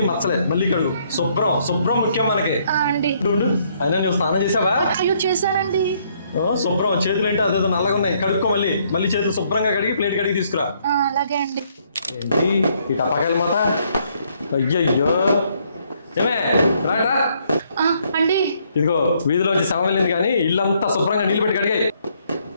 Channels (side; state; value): both; inverted; correlation -0.69